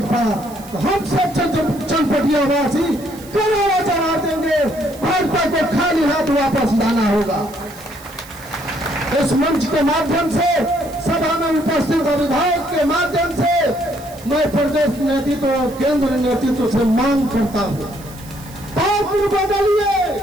तो हम सब चनपटिया वासी करोड़ों चढ़ा देंगे। भाजपा को खाली हाथ वापस लाना होगा। इस मंच के माध्यम से, सभा में उपस्थित विधायक के माध्यम से मैं प्रदेश नेतृत्व और केंद्र नेतृत्व से मांग करता हूं, पात्र बदलिए,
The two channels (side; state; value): right; noise; hiss, 20 dB below the sound